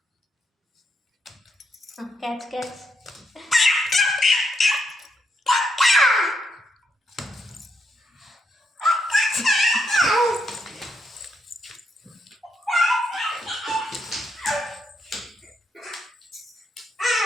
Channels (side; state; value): both; normal; correlation 0.80